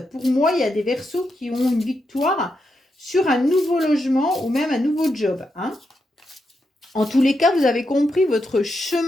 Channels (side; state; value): both; normal; correlation 0.84